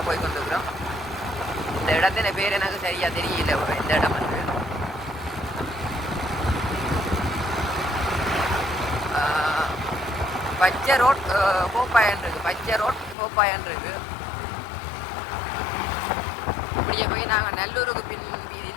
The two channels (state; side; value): drops out; right; at 13.2 s